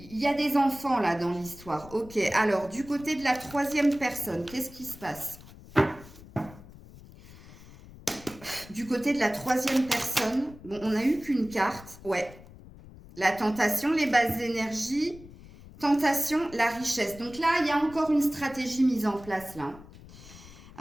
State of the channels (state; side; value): noise; left; rumble, 19 dB below the sound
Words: des enfants là dans l'histoire. Ok, alors du côté de la troisième personne, qu'est-ce qui se passe? Du côté de la troisième personne, bon, on n'a eu qu'une carte. Ouais, la tentation, les bases d'énergie, tentation, la richesse. Donc là, il y a encore une stratégie mise en place là.